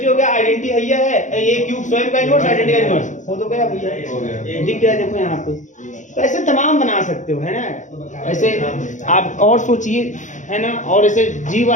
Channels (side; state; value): right; late; 0.36 ms